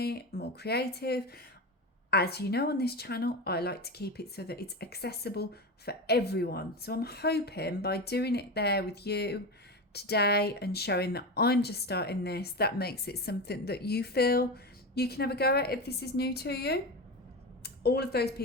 more creative. As you know, on this channel, I like to keep it so that it's accessible for everyone. So I'm hoping by doing it there with you today and showing that I'm just starting this, that makes it something that you feel you can have a go at if this is new to you. All of those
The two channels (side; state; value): both; normal; correlation 0.21